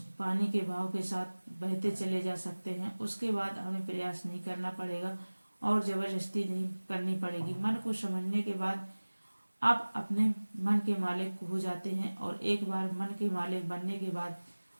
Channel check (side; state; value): both; inverted; correlation -1.00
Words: पानी के बहाव के साथ बहते चले जा सकते हैं। उसके बाद हमें प्रयास नहीं करना पड़ेगा और जबरदस्ती नहीं करनी पड़ेगी। मन को समझने के बाद आप अपने मन के मालिक हो जाते हैं और एक बार मन के मालिक बनने के बाद